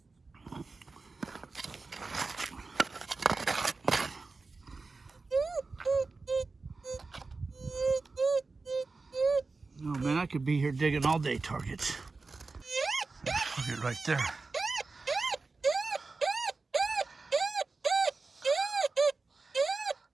Oh man, I could be here digging all day targets. Look at right there.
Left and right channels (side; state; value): left; quieter; 3.9 dB